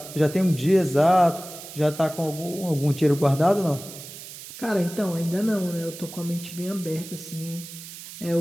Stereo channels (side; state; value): right; noise; hiss, 13 dB below the sound